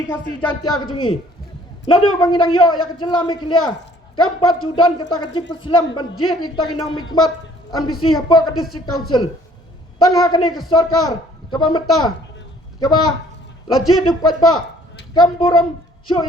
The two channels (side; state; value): both; normal; correlation 0.58